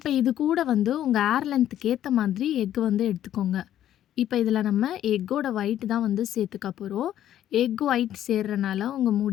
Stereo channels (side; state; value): right; quieter; 11.6 dB